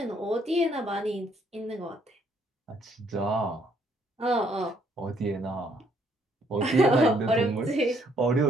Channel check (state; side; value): normal; both; correlation 0.68